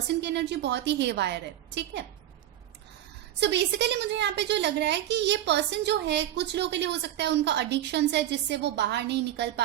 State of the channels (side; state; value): left; quieter; 12.6 dB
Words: की एनर्जी बहुत ही हेवायर है, ठीक है। सो बेसिकली मुझे यहाँ पे जो लग रहा है कि ये पर्सन जो है, कुछ लोगों के लिए हो सकता है उनका एडिक्शन है जिससे वो बाहर नहीं निकल